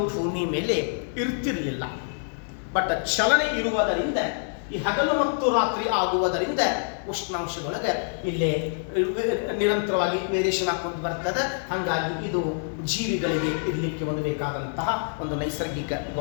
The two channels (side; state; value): right; silent; 61 dB below the other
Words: ಭೂಮಿ ಮೇಲೆ ಇರ್ತಿರಲಿಲ್ಲ. ಬಟ್ ಚಲನೆ ಇರುವುದರಿಂದ, ಈ ಹಗಲು ಮತ್ತು ರಾತ್ರಿ ಆಗುವುದರಿಂದ ಉಷ್ಣಾಂಶದೊಳಗೆ ಇಲ್ಲೇ ನಿರಂತರವಾಗಿ ವೇರಿಯೇಷನ್ ಹಾಕೊಂಡು ಬರ್ತದೆ. ಹಾಗಾಗಿ ಇದು ಜೀವಿಗಳಿಗೆ ಇರಲಿಕ್ಕೆ ಒಂದು ಬೇಕಾದಂತಹ ಒಂದು ನೈಸರ್ಗಿಕ